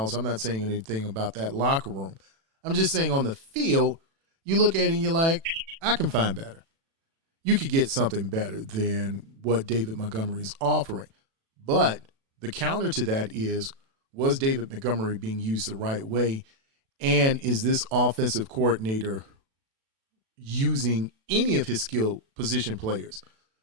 I'm not saying anything about that locker room. I'm just saying on the field, you look at it and you're like, I can find better. You could get something better than what David Montgomery is offering. But the counter to that is, was David Montgomery being used the right way? And is this offensive coordinator using any of his skill position players?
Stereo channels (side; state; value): left; late; 36 ms